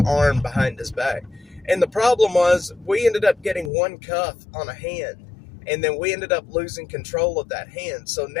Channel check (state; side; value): drops out; right; at 3.7 s